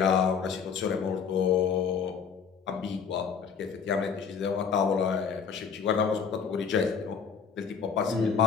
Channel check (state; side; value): quieter; right; 6.4 dB